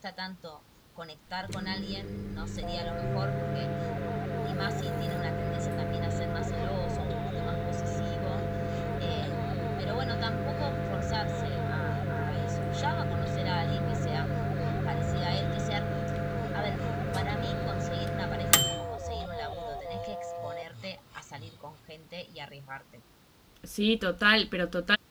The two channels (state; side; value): identical; both; correlation 1.00